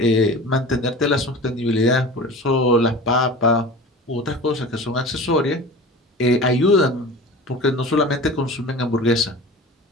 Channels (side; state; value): both; normal; correlation 0.36